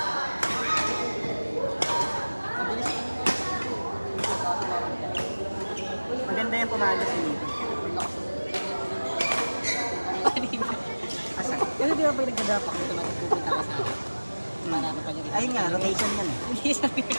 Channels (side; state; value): both; inverted; correlation -1.00